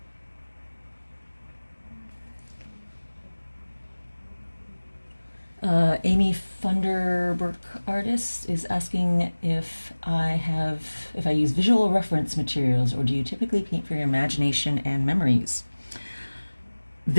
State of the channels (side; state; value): both; inverted; correlation -1.00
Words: Amy Funderburk Artist is asking if I use visual reference materials, or do you typically paint for your imagination and memories?